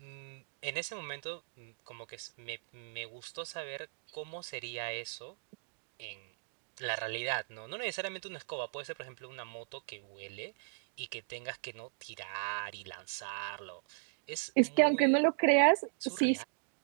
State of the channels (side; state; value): left; silent; digital silence